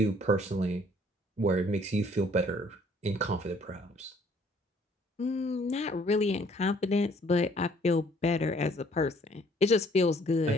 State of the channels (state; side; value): normal; both; correlation 0.60